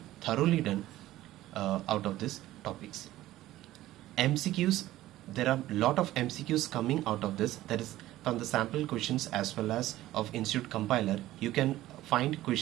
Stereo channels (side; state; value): left; quieter; 15.3 dB